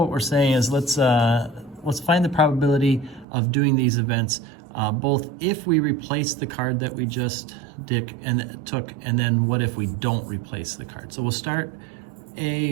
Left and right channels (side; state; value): left; drops out; at 3.2 s